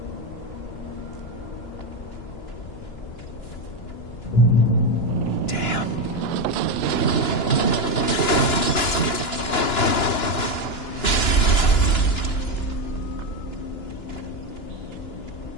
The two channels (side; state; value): right; late; 2.9 ms